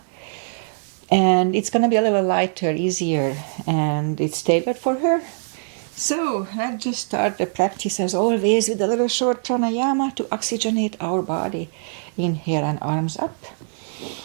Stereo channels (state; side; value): silent; left; 62 dB below the other